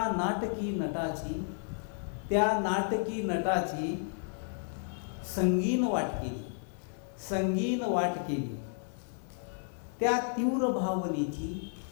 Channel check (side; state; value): right; silent; digital silence